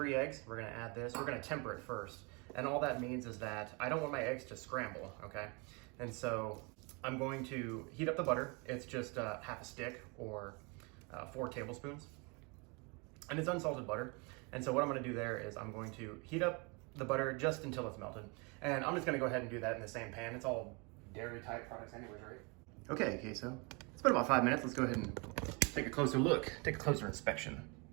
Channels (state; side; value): quieter; left; 30.7 dB